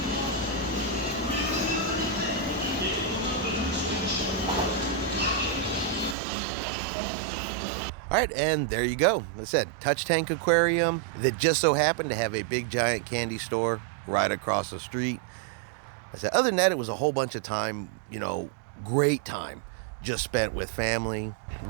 All right, and there you go. Like I said, touch tank aquarium that just so happened to have a big giant candy store right across the street. I said, other than that, it was a whole bunch of time, great time just spent with family.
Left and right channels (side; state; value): left; drops out; at 6.2 s